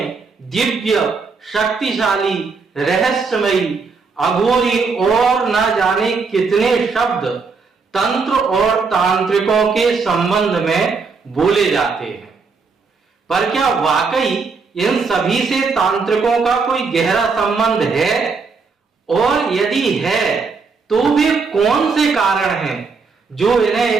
दिव्य, शक्तिशाली, रहस्यमयी, अघोरी और न जाने कितने शब्द तंत्र और तांत्रिकों के संबंध में बोले जाते हैं। पर क्या वाकई इन सभी से तांत्रिकों का कोई गहरा संबंध है? और यदि है तो वे कौन से कारण हैं जो इन्हें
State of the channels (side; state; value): left; quieter; 4.8 dB